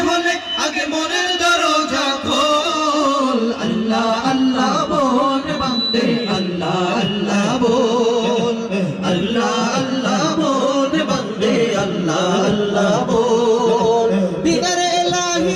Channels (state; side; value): identical; both; correlation 1.00